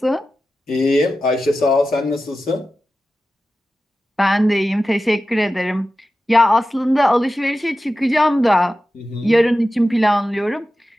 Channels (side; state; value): both; normal; correlation 0.93